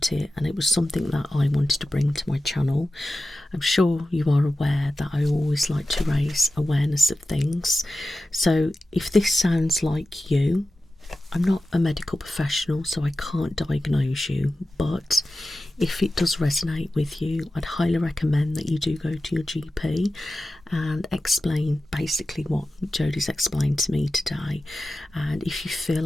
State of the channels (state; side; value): normal; both; correlation 0.94